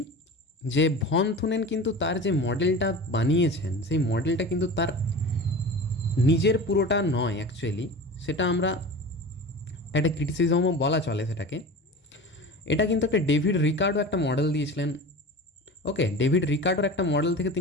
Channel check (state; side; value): normal; both; correlation 0.34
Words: যে ভন থুনেন কিন্তু তার যে মডেলটা বানিয়েছেন সেই মডেলটা কিন্তু তার নিজের পুরোটা নয় অ্যাকচুয়ালি, সেটা আমরা একটা ক্রিটিসিজমও বলা চলে সেটাকে। এটা কিন্তু একটা ডেভিড রিকার্ডো একটা মডেল দিয়েছিলেন। ওকে, ডেভিড রিকার্ডোর একটা মডেল থেকে